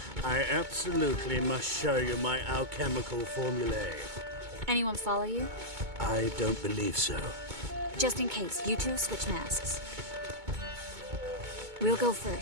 I absolutely must show you my alchemical formulae. Anyone follow you? I don't believe so. Just in case, you two switch masks. We'll go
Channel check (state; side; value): late; left; 2.2 ms